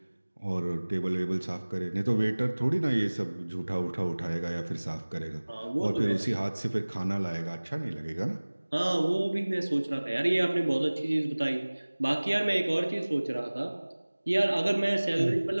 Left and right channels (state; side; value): inverted; both; correlation -1.00